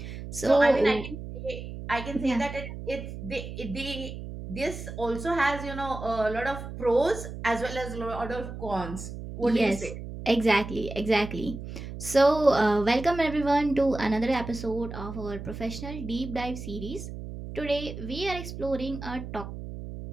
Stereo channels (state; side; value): noise; right; hum, 9 dB below the sound